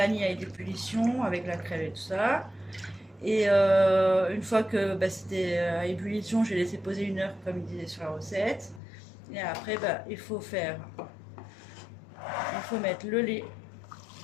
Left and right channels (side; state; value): right; drops out; at 8.8 s